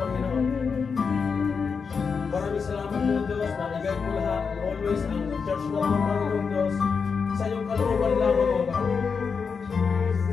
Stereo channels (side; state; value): right; quieter; 5.6 dB